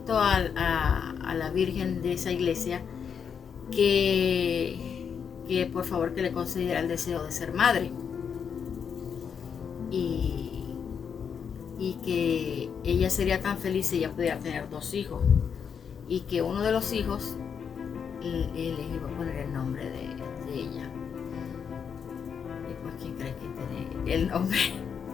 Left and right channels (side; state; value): right; quieter; 7.0 dB